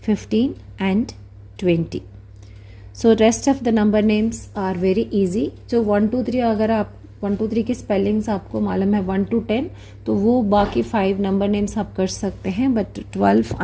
15 and 20. So rest of the number names are very easy. So 1, 2, 3 अगर आप 1, 2, 3 की spellings आपको मालूम है 1 to 10, तो वो बाकी 5 number names आप कर सकते हैं. But 12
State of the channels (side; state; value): both; identical; correlation 1.00